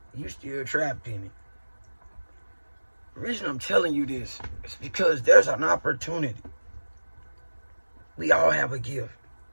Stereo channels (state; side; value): inverted; both; correlation -1.00